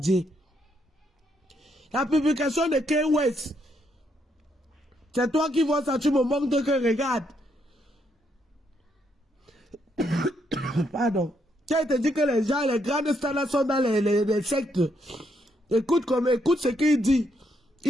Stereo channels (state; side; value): normal; both; correlation 0.76